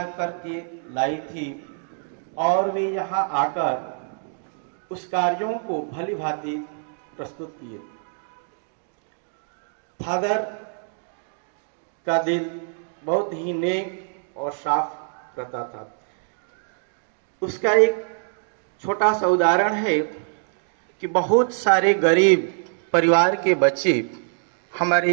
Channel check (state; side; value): silent; left; digital silence